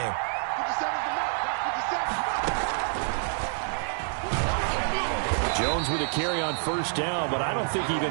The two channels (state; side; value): silent; left; 60 dB below the other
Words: Jones with a carry on first down, but I don't think he